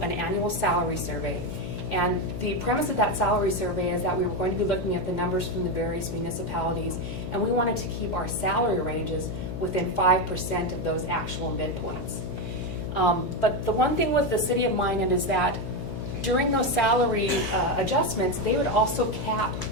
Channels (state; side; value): noise; left; hum, 6 dB below the sound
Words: an annual salary survey. And the premise of that salary survey is that we were going to be looking at the numbers from the various municipalities, and we wanted to keep our salary ranges within 5% of those actual midpoints. But the one thing with the City of Minot is that during those salary adjustments, they would also cap